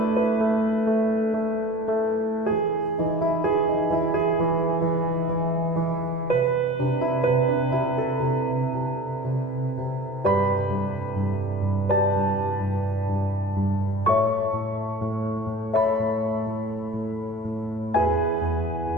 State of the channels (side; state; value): both; normal; correlation 0.41